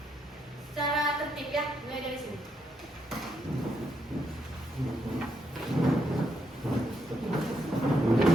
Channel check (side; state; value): both; normal; correlation 0.78